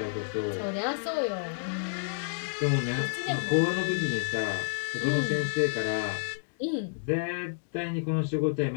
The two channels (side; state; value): right; silent; digital silence